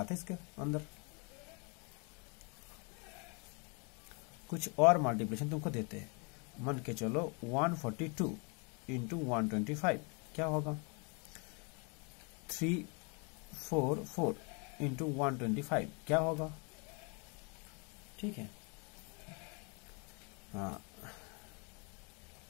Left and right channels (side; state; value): right; quieter; 34.1 dB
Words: इसके अंदर, कुछ और मल्टीप्लिकेशन तुमको देते हैं। मान के चलो 142 इंटू 125 क्या होगा? 344 इंटू 125 क्या होगा? ठीक है, हाँ